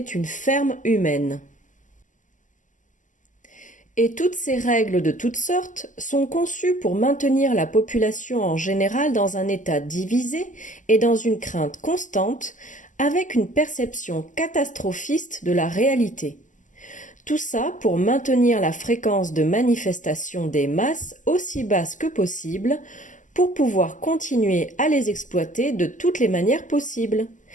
ferme humaine. Et toutes ces règles de toutes sortes sont conçues pour maintenir la population en général dans un état divisé et dans une crainte constante, avec une perception catastrophiste de la réalité. Tout ça pour maintenir la fréquence de manifestation des masses aussi basse que possible, pour pouvoir continuer à les exploiter de toutes les manières possibles.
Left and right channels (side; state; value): right; late; 0.37 ms